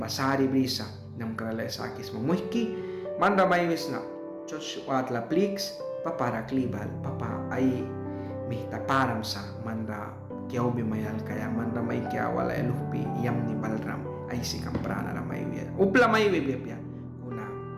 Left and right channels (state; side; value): identical; both; correlation 1.00